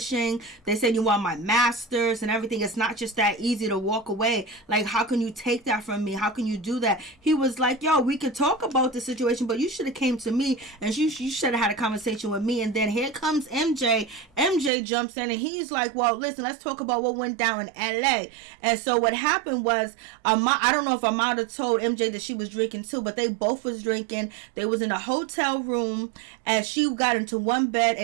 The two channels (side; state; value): left; drops out; at 14.7 s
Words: They said you want my masters and everything. It's not just that easy to walk away. Like, how can you take that from me? How can you do that? He was like, yo, we could talk about the situation, but you should have came to me, and you should have had a conversation with me. And then here comes MJ. MJ jumps in and he's like, well, listen, let's talk about what went down in LA. And so what happened was, I don't know if Amada told MJ that she was drinking too, but they both was drinking. They was in a hotel room, and she got into one bed